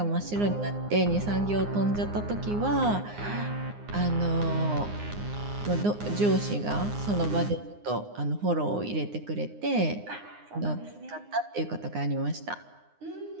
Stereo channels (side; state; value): left; late; 9.7 ms